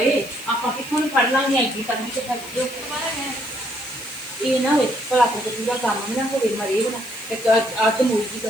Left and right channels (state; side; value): noise; left; hiss, 17 dB below the sound